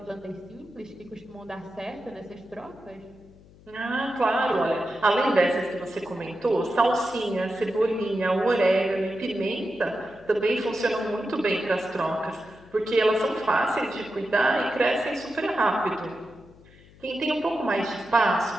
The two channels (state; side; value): noise; left; hum, 24 dB below the sound